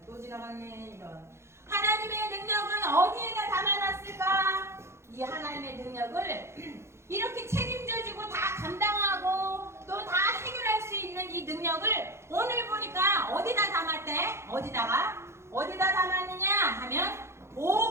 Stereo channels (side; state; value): left; late; 0.13 ms